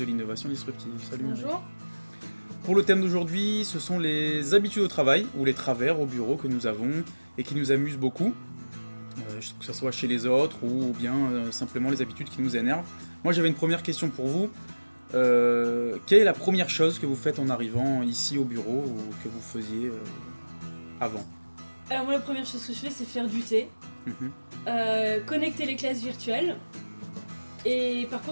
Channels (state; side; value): inverted; both; correlation -1.00